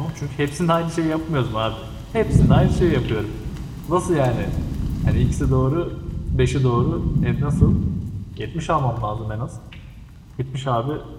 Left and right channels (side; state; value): both; identical; correlation 1.00